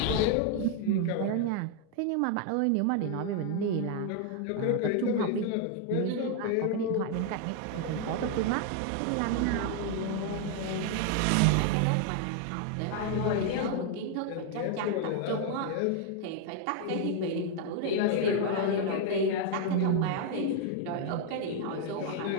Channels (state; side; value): different; both; correlation 0.00